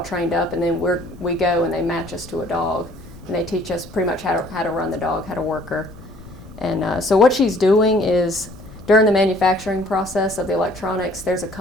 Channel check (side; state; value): left; noise; rumble, 19 dB below the sound